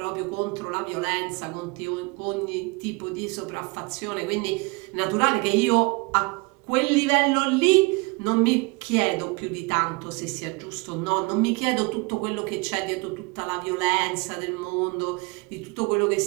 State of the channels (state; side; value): quieter; left; 27.9 dB